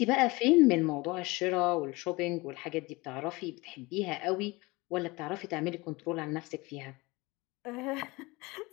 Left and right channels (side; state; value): right; quieter; 23.5 dB